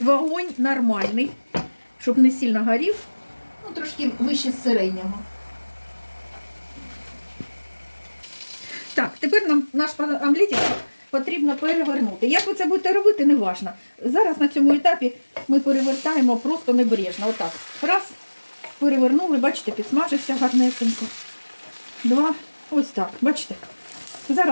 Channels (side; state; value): both; inverted; correlation -1.00